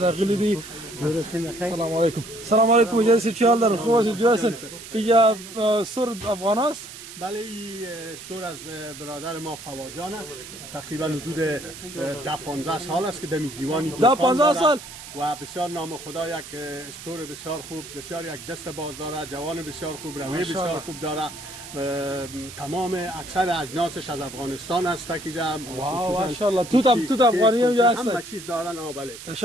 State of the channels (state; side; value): noise; right; hiss, 14 dB below the sound